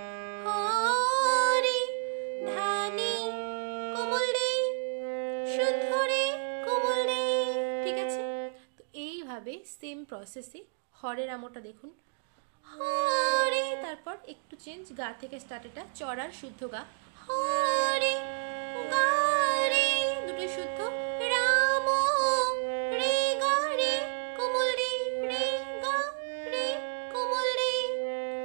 হরে ধানি কোমল রে শুদ্ধ রে কোমল রে। ঠিক আছে, তো এইভাবে সেম প্রসেসে হরের আমটা দেখুন, হরে, তারপর একটু চেঞ্জ, গা থেকে স্টার্ট, এটা চড়ার শুদ্ধ গা, হরে গা রে দুটো শুদ্ধ, রাম রে গা রে কোমল রে, রে গা রে কোমল রে,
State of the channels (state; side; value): silent; left; digital silence